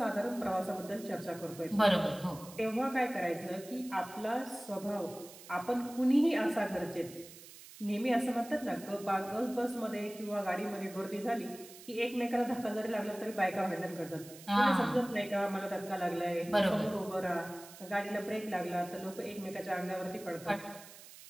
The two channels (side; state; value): right; noise; hiss, 17 dB below the sound